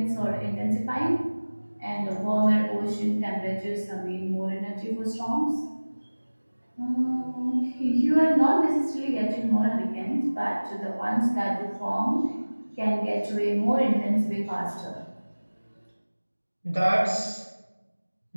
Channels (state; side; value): inverted; both; correlation -1.00